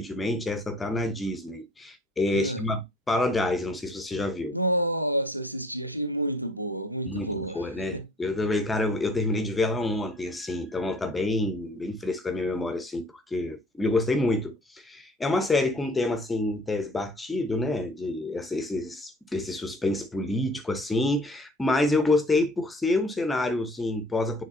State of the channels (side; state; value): both; normal; correlation 0.52